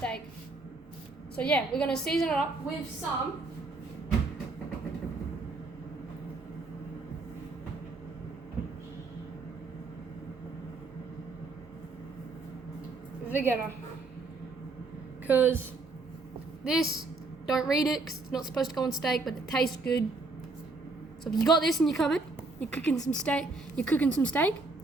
So yeah, we're going to season it up with some Vegeta, because this, don't read it because it's not supposed to go on steak, but it tastes good. So if you got this in your cupboard, you're cooking some steak,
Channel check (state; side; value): quieter; left; 3.5 dB